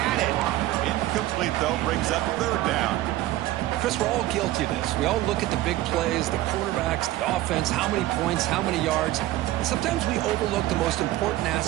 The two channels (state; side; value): quieter; left; 15.8 dB